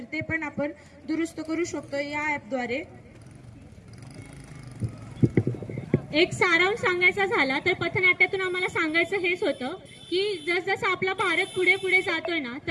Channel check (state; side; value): identical; both; correlation 1.00